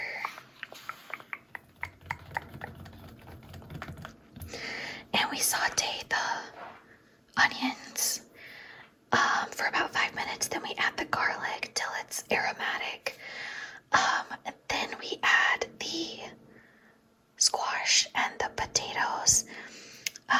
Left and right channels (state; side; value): identical; both; correlation 1.00